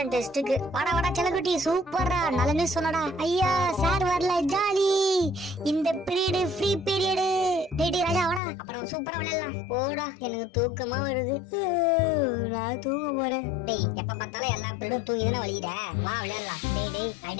டெஸ்ட்டுக்கு. வாடா செல்லக்குட்டி, சூப்பர்ரா, நல்ல நியூஸ் சொன்னடா. ஐயா சார் வரல, ஜாலி. இந்த பீரியட் ஃப்ரீ பீரியட். டேய் ராஜா வாடா, அப்புறம் சூப்பரா விளையாடலாம். போடா, எனக்கு தூக்கமா வருது. நான் தூங்க போறேன். டேய், எப்ப பார்த்தாலும் எல்லா பீரியடும் தூங்கி தானே வலிக்கிற. வா விளையாடலாம். டேய்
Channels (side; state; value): right; drops out; at 8.4 s